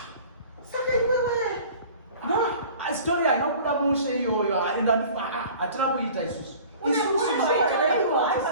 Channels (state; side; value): inverted; both; correlation -0.45